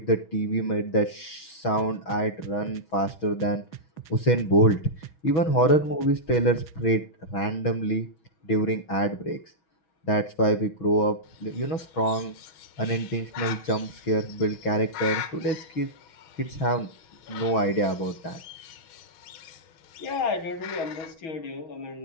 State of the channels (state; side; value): late; right; 6.2 ms